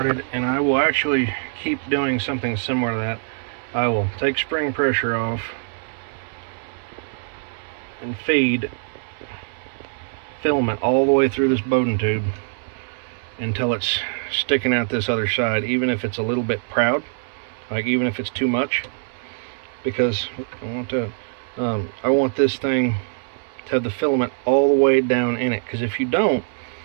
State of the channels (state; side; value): silent; left; 63 dB below the other